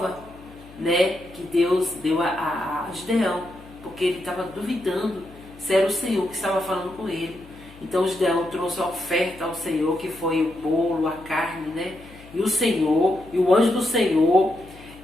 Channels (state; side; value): noise; left; hum, 21 dB below the sound